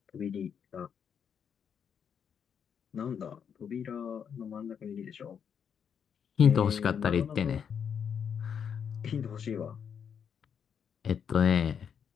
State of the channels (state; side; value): quieter; right; 7.6 dB